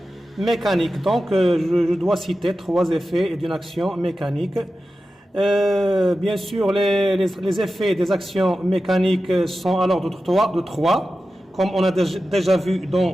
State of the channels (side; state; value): both; normal; correlation 0.93